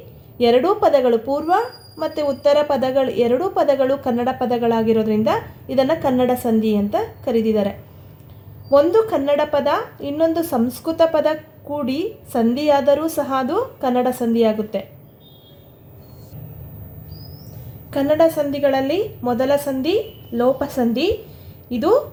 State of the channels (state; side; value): identical; both; correlation 1.00